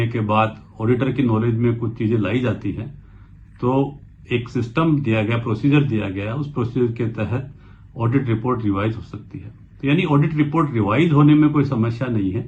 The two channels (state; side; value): identical; both; correlation 1.00